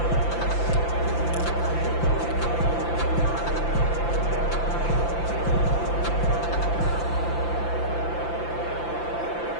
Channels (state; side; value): late; right; 5.9 ms